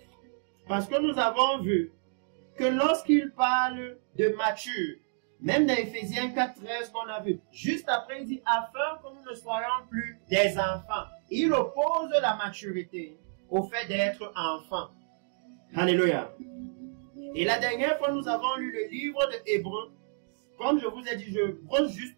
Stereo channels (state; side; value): silent; left; digital silence